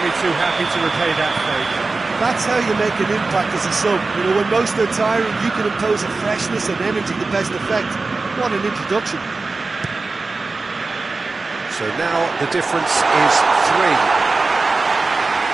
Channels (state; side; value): quieter; left; 3.7 dB